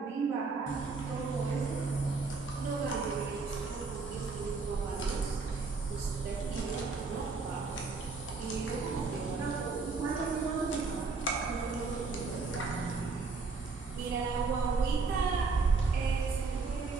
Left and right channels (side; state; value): left; quieter; 4.3 dB